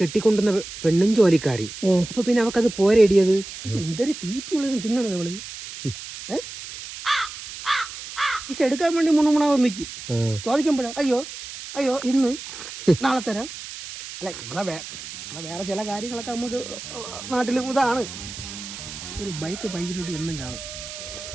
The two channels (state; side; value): noise; right; hiss, 11 dB below the sound